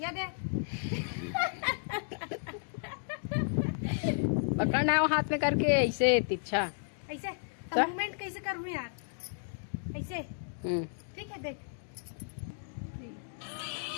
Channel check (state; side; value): silent; right; digital silence